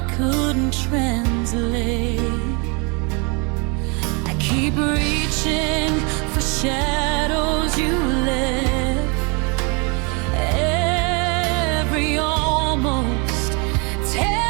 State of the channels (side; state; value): left; quieter; 32.0 dB